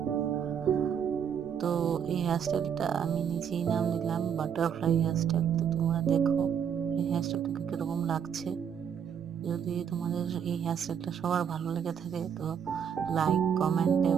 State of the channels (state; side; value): quieter; left; 7.9 dB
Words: তো এই হেয়ারস্টাইলটা আমি নিজেই নাম দিলাম বাটারফ্লাই হেয়ারস্টাইল। তো তোমরা দেখো এই হেয়ারস্টাইলটাকে কিরকম লাগছে। যদি তোমাদের এই হেয়ারস্টাইলটা সবার ভালো লেগে থাকে তো লাইক, কমেন্ট